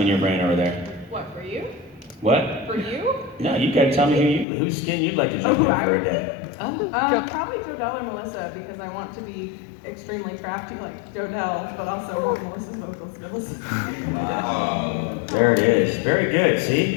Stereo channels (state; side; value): drops out; right; at 4.5 s